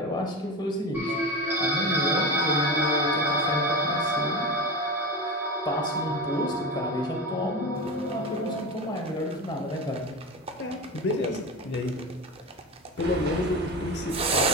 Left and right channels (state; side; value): normal; both; correlation 0.24